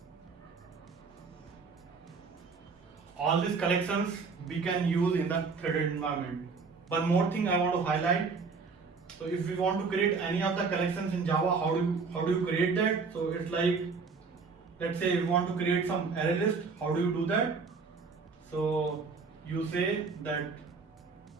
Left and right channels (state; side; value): quieter; left; 4.8 dB